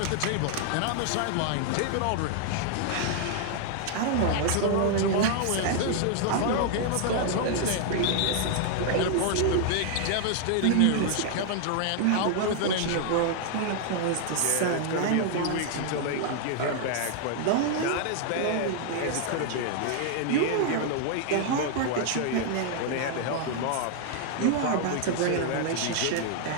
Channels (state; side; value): different; both; correlation 0.00